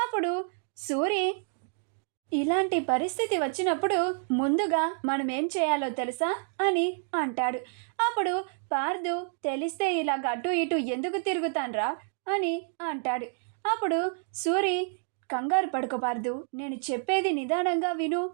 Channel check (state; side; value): silent; left; 59 dB below the other